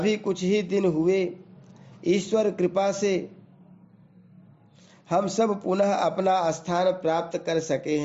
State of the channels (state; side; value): identical; both; correlation 1.00